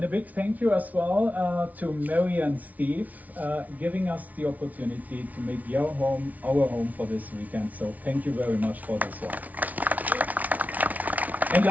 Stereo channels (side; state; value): left; late; 0.073 ms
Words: a big thank you as well to Mary and Steve, giving us the opportunity to make your home our home for this weekend. So, thank you very much for this one. And